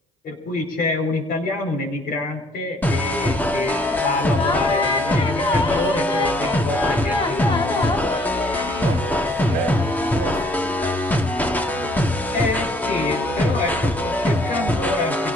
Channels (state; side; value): normal; both; correlation 0.62